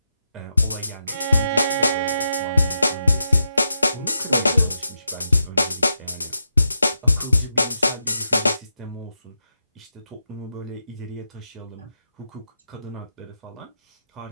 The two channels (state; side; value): inverted; both; correlation -0.86